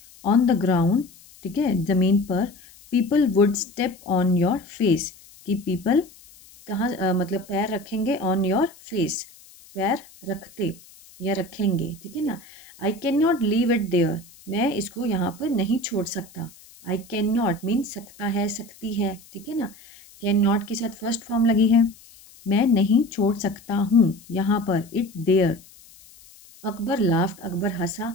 ऑन द ग्राउंड, ठीक है, ज़मीन पर, people would step on your face, कि पीपल कहाँ मतलब पैर रखेंगे, ऑन योर फेस, पैर रखते या रखेंगे, ठीक है ना। I can not leave it there, मैं इसको यहाँ पर नहीं छोड़ सकता। आई कैन नॉट मीन सकता है, सकती है, ठीक है ना। कैन नॉट के साथ फर्स्ट फॉर्म लगी है, मैं नहीं छोड़ सकता हूँ यहाँ पर, it there. Akbar laughed, Akbar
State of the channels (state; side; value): noise; left; hiss, 24 dB below the sound